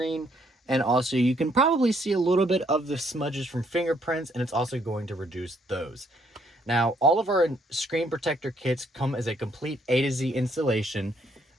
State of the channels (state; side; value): normal; both; correlation 0.69